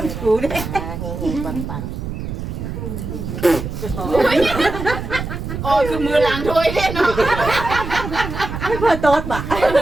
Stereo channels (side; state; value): right; noise; rumble, 6 dB below the sound